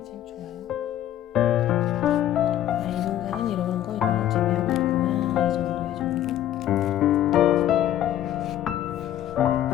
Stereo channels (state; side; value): quieter; right; 12.0 dB